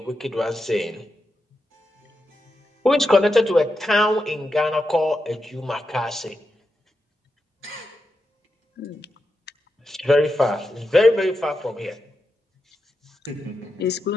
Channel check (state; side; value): normal; both; correlation 0.87